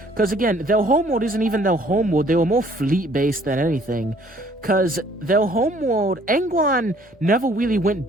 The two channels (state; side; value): normal; both; correlation 0.58